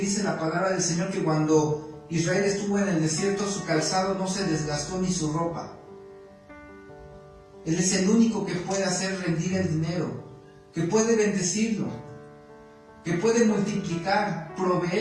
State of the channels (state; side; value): identical; both; correlation 1.00